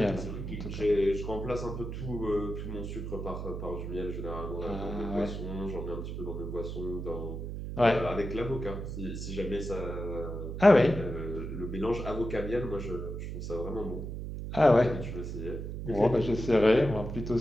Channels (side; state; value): right; noise; hum, 6 dB below the sound